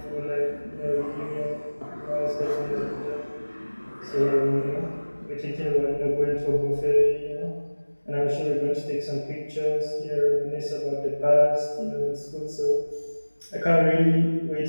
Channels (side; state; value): both; inverted; correlation -1.00